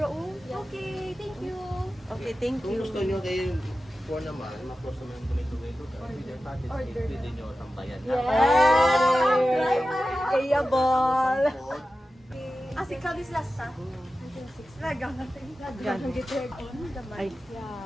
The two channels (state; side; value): normal; both; correlation 0.93